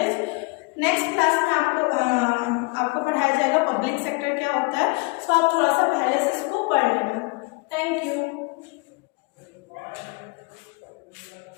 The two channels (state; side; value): quieter; right; 28.9 dB